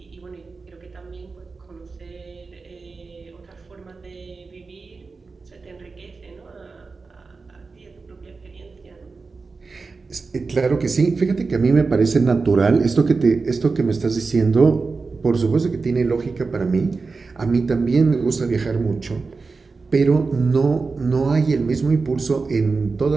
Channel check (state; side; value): quieter; left; 4.3 dB